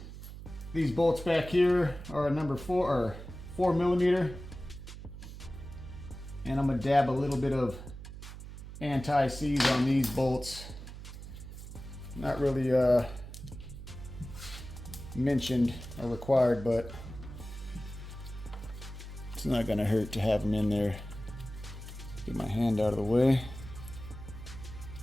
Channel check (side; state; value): right; noise; hum, 12 dB below the sound